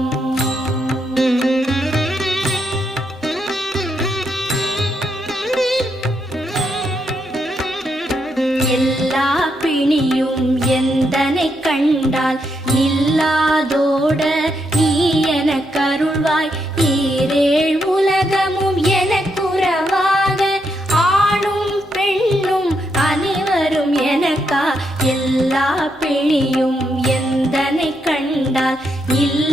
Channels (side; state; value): both; normal; correlation 0.80